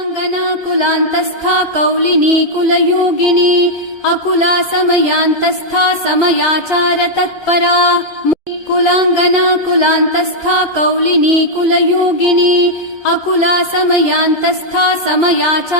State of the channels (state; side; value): late; left; 1.3 ms